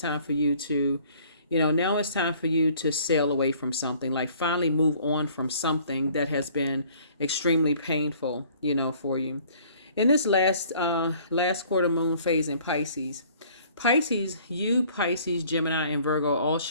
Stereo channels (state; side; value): inverted; both; correlation -0.56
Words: time for you to sail away from something, like finally move on from something that has been extremely painful, for you. In this last quarter moon phase in Pisces, Pisces, Gemini, and Virgo all